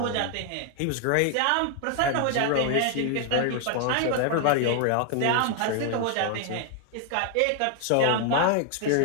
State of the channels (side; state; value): both; different; correlation 0.00